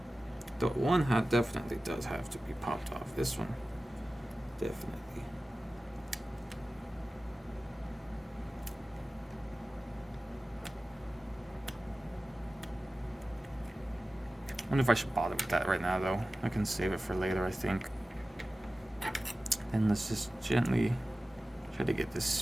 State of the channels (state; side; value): normal; both; correlation 0.95